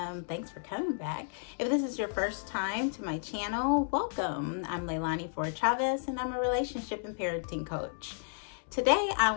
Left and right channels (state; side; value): silent; right; digital silence